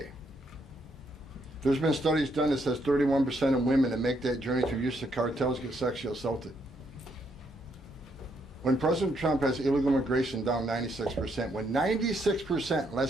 There's been studies done that says 31% of women that make that journey through use of cartels get sexually assaulted. When President Trump has illegal immigration down 96%, when 96%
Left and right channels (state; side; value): normal; both; correlation 0.74